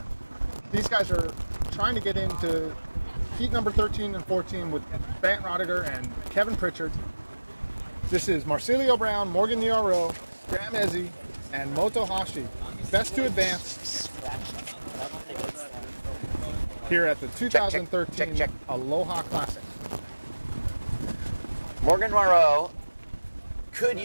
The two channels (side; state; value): both; inverted; correlation -1.00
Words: These guys are trying to get into heat number 13 and 14 with Bant Rodiger and Kevin Pritchard. This is Marcelio Brown, Morgan Noiro, Graham Ezzy, and Motohashi. Best to advance here at the 2013 check. Aloha Classic. Morgan Moreau could